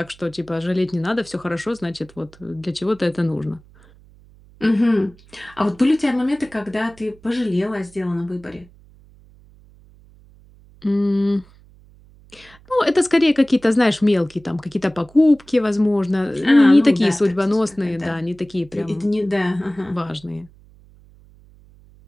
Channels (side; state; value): right; noise; hum, 26 dB below the sound